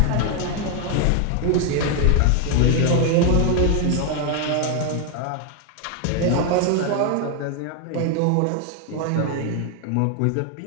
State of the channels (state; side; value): different; both; correlation 0.01